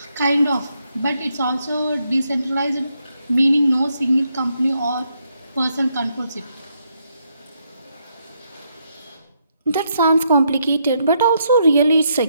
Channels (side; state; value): both; inverted; correlation -0.77